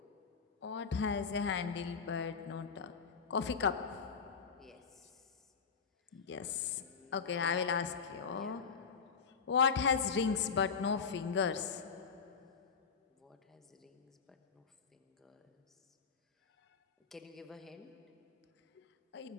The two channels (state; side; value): quieter; right; 5.9 dB